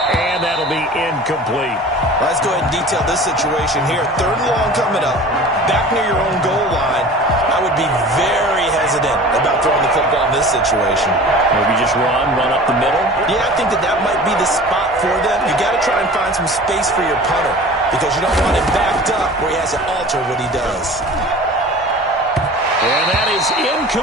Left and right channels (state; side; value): normal; both; correlation 0.41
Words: And that'll be incomplete. Let's go ahead and detail this situation here. 3rd and long coming up. Back near your own goal line. I would be very hesitant about throwing the football in this situation. Maybe just run up the middle? Yeah, I think that might be the spot for them. You got to try and find some space for your punter because you don't want him backed up where he has to alter what he does. And that is